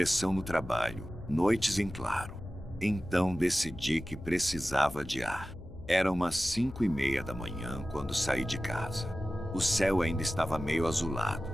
no trabalho, noites em claro. Então decidi que precisava de ar. Era umas 5:30 da manhã quando saí de casa. O céu ainda estava meio azulado,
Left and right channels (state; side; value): noise; left; hum, 16 dB below the sound